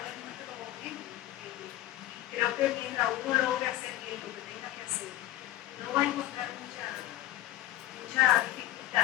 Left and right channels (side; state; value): right; quieter; 14.6 dB